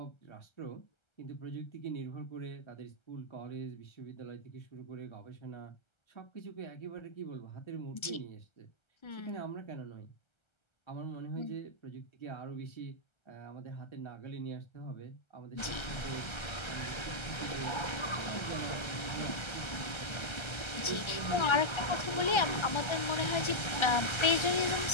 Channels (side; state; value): right; late; 1.3 ms